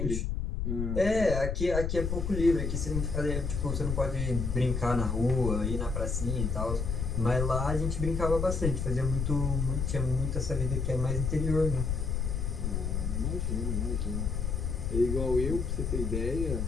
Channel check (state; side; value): noise; left; rumble, 1 dB below the sound